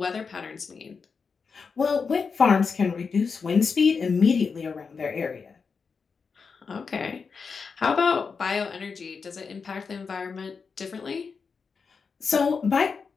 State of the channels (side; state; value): right; quieter; 5.3 dB